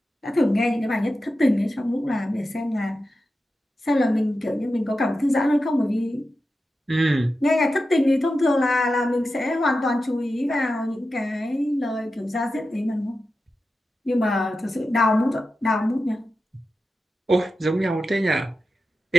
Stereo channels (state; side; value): normal; both; correlation 0.91